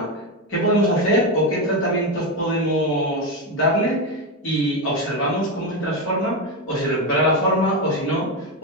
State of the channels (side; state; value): both; normal; correlation 0.11